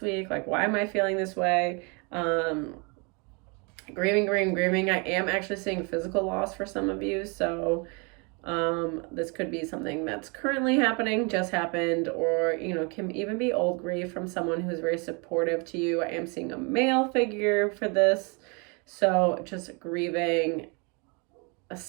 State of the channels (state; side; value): quieter; left; 32.2 dB